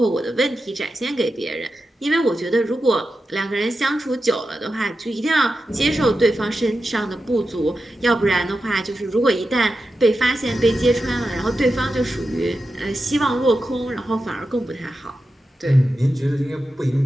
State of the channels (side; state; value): both; normal; correlation 0.91